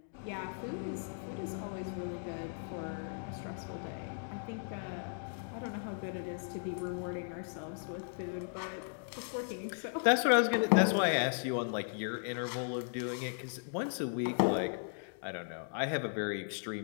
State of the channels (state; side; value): silent; right; digital silence